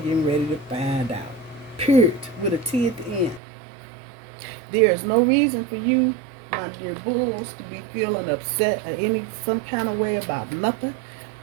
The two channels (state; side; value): drops out; left; at 3.4 s